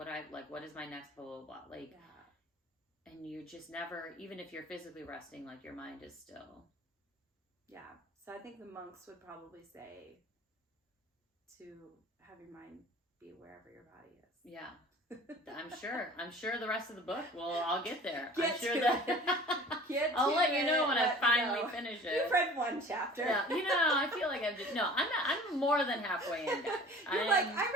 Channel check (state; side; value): normal; both; correlation 0.45